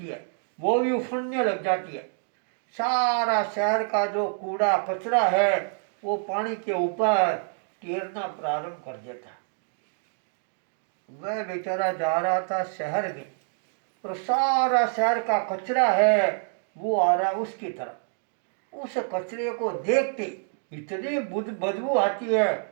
है वो भी उफड़ने लग जाती है। सारा शहर का जो कूड़ा कचरा है वो पानी के ऊपर तैरना प्रारंभ कर देता है। वह बेचारा जा रहा था शहर में और सारा शहर का कचरा है वो आ रहा उसकी तरफ। उस कचरे को देखते इतनी बदबू आती है,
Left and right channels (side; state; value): left; silent; 60 dB below the other